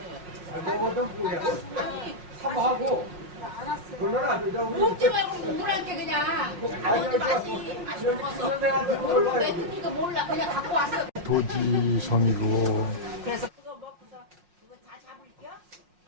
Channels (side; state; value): left; late; 5.5 ms